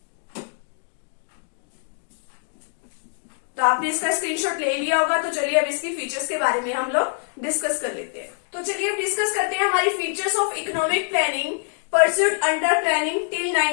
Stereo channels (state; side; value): silent; right; digital silence